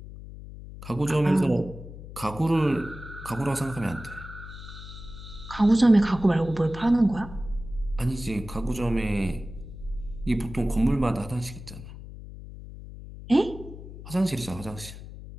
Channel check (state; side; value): noise; left; hum, 13 dB below the sound